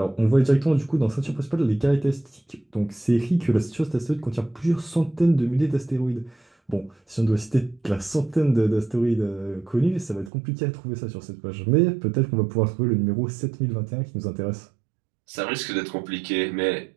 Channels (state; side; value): drops out; left; at 10.3 s